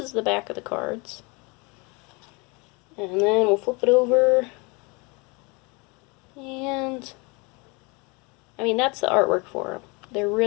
the back of the cards. And then we'll flip it over. And, I mean, that's the artwork for them. They're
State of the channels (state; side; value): quieter; right; 28.8 dB